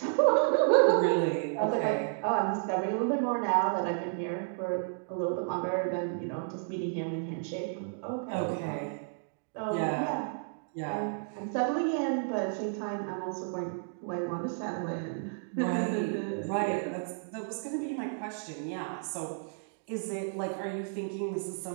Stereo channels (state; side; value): silent; left; digital silence